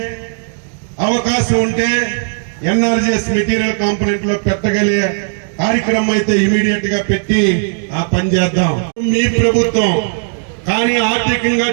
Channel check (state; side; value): silent; left; digital silence